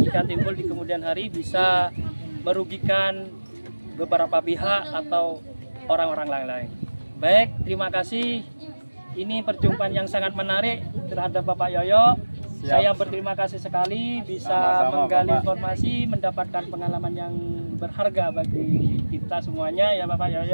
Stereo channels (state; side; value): inverted; both; correlation -1.00